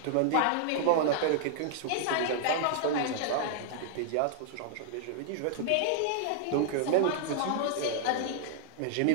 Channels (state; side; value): different; both; correlation -0.01